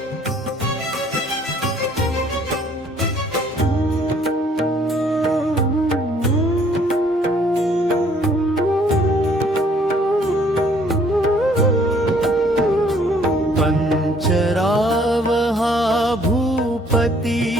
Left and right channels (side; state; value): both; normal; correlation 0.61